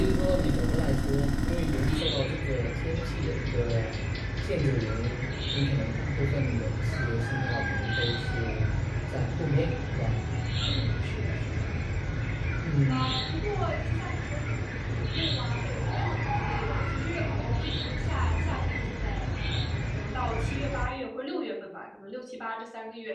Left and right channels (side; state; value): both; identical; correlation 1.00